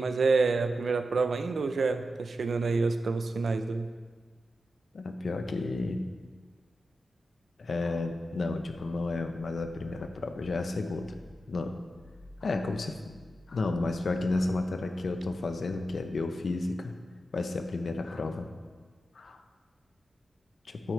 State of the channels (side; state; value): both; normal; correlation 0.90